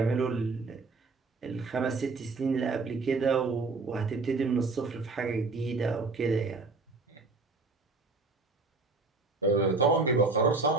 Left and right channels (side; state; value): left; quieter; 3.8 dB